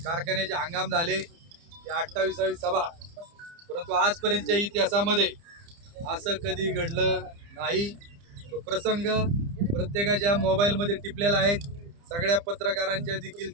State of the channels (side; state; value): left; late; 30 ms